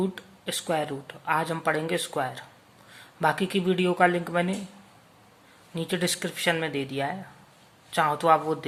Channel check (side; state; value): both; identical; correlation 1.00